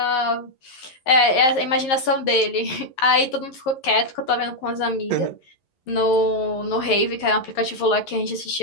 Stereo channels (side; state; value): right; late; 11 ms